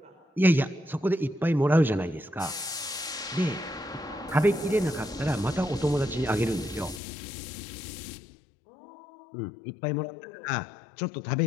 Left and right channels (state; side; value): drops out; right; at 7.0 s